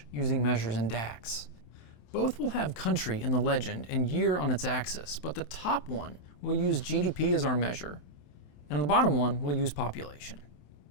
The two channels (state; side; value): late; right; 28 ms